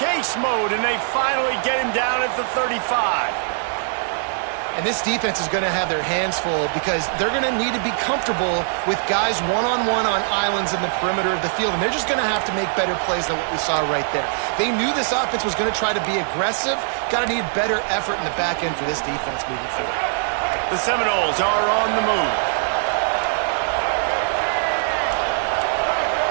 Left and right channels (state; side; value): silent; left; digital silence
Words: mode, and they finally get him down at the 35. And this defense is going to have their hands full because they're going to need to be comfortable with guys one-on-one on islands in the perimeter of the field. And they're just going to have to make better plays than what we saw right there. They knew this offense was going to try to be aggressive. Got to need better effort in the back end for this defense moving forward. The Seminoles are on the move.